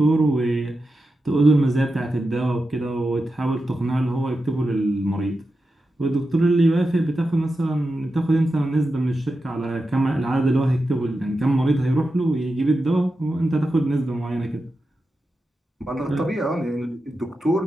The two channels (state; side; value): normal; both; correlation 0.90